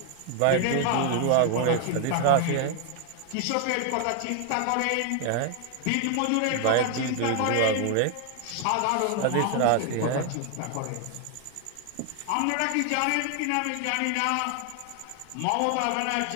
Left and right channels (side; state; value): both; different; correlation 0.00